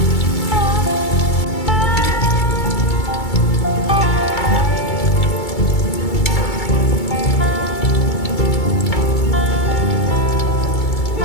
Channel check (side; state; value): right; late; 2.3 ms